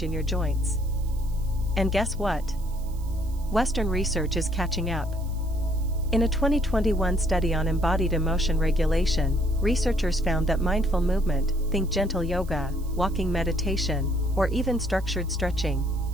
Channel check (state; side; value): noise; right; hiss, 23 dB below the sound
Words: in your joints. And guess what? Western research is catching up. In a 2021 study on embodied emotion regulation, researchers found that mindful movement, think gentle yoga, walking meditation, or even structured stretching,